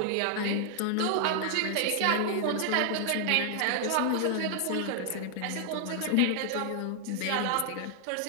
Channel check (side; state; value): both; different; correlation 0.00